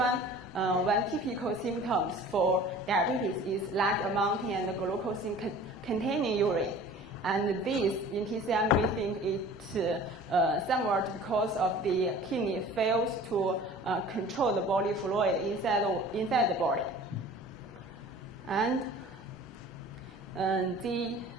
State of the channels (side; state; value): both; normal; correlation 0.44